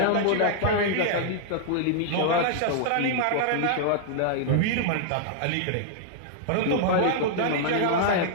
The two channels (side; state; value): both; different; correlation -0.01